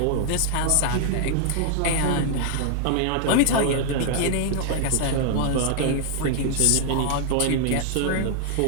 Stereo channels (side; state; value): both; different; correlation -0.01